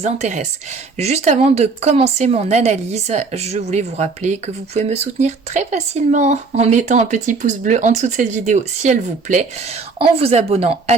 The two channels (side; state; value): left; quieter; 4.3 dB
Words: intéresse. Juste avant de commencer mon analyse, je voulais vous rappeler que vous pouvez me soutenir très facilement en mettant un petit pouce bleu en dessous de cette vidéo si elle vous plaît, en vous abonnant à